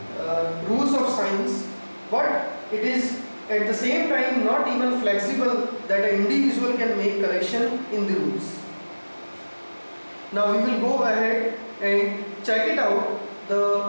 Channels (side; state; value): both; inverted; correlation -1.00